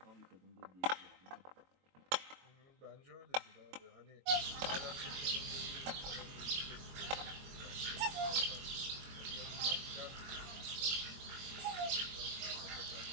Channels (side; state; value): left; late; 22 ms